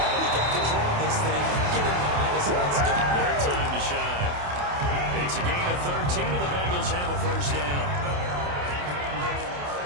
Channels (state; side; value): late; left; 28 ms